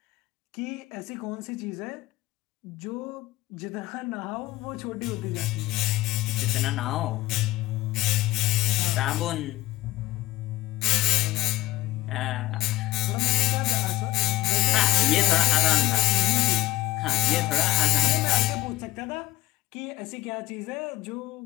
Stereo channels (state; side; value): quieter; right; 17.6 dB